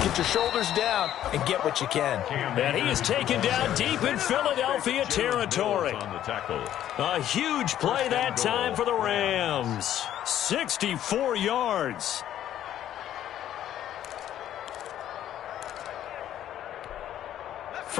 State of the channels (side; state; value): right; quieter; 11.5 dB